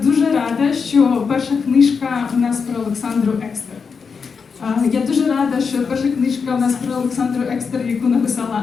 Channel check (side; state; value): right; quieter; 5.6 dB